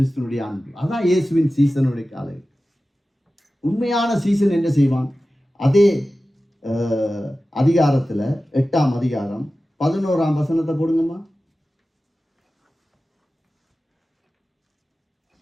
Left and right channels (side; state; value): both; normal; correlation 0.95